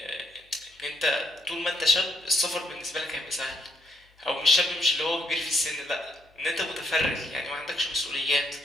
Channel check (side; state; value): both; normal; correlation 0.74